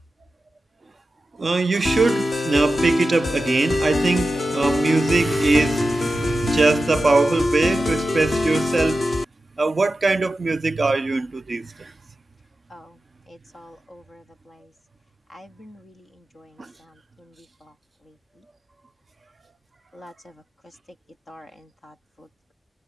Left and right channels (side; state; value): both; normal; correlation 0.93